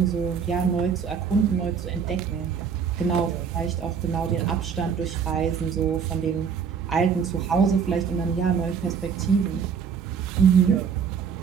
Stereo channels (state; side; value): quieter; left; 6.7 dB